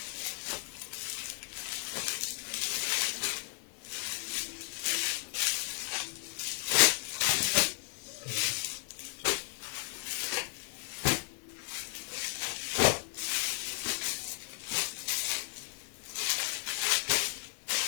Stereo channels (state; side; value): silent; right; 55 dB below the other